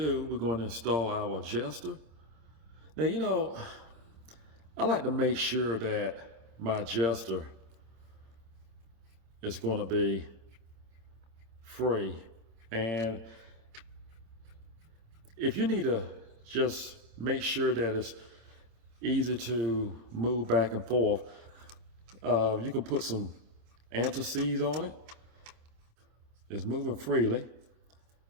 we're going to install our adjuster. Now, you know, I like to make sure that my adjuster is going to be free. And if you need to just make sure that it's easy to move back and forth, you can put some anti-seize on it. It's moving freely,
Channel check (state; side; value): late; left; 26 ms